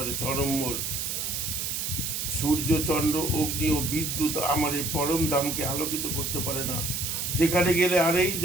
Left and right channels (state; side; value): noise; right; hiss, 2 dB below the sound